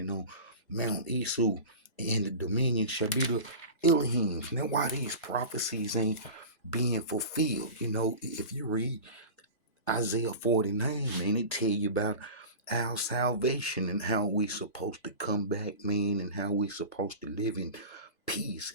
on Mount Esau, and the dominion shall be the Elohims. Now, why these prophecies ain't being fulfilled? If you read Isaiah 49, man, it tell you about our salvation and how we supposed to come back, man, and how we supposed to live in peace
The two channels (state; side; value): inverted; both; correlation -0.32